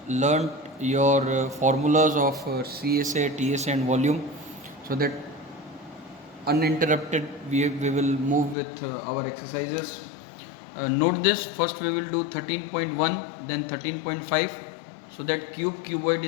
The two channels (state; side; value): drops out; right; at 8.6 s